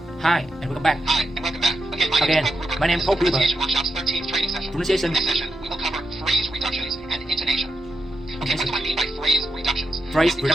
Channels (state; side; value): normal; both; correlation 0.86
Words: Hi, and welcome back. Hi, and welcome back. Again, my name is Paul Gruber. Pronunciation Workshop's 13th training session. Pronunciation. In this session, we will cover phrase reductions and intonation. Okay, what do I mean by phrase reductions? Phrase In